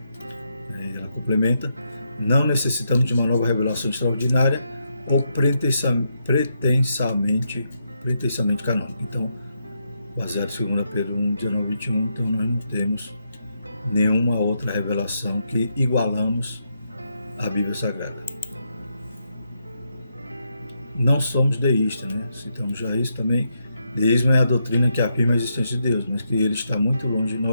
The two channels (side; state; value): both; inverted; correlation -0.81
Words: Ela complementa: não necessitamos de uma nova revelação extraordinária ou pretensamente canônica. Então, baseado em 2 Pedro 1:19-21, então nós não temos nenhuma outra revelação que igualamos à Bíblia Sagrada. Não somos deístas, né? Citamos já isso também. Deísmo é a doutrina que afirma a existência de Deus, mas que ele está muito longe de